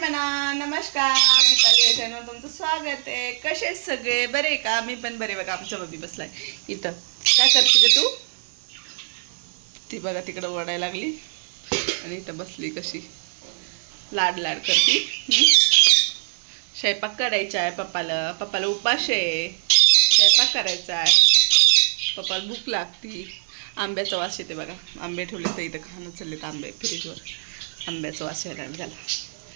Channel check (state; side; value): silent; left; 62 dB below the other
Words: नमस्कार, दीपाली या चॅनलवर तुमचं स्वागत आहे. कसे सगळे बरे का? मी पण बरे. बघा आमच्या बबी बसलाय इथं. काय करते ग तू? ती बघा तिकडं ओरडायला लागली आणि इथं बसली कशी लाड लाड करती. स्वयंपाक करायचा आहे पप्पाला. पप्पाला उपास आहे, स्वयंपाक करायचा आहे. पप्पाला भूक लागती. आंब्याचा वास येते बघा. आंबे ठेवले तर इथं खाणं चाललेत आंबे फ्रीजवर. आंब्याचा वास यायला झाला.